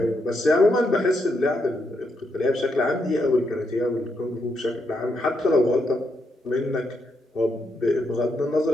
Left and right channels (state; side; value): normal; both; correlation 0.80